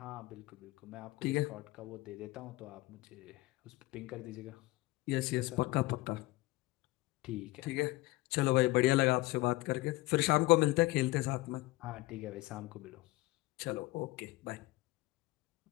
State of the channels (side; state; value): right; quieter; 20.0 dB